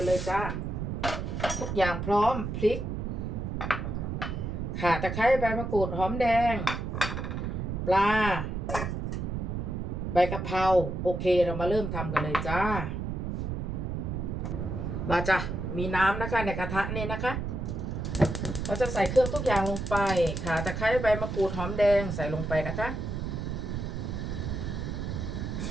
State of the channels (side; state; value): right; noise; rumble, 3 dB below the sound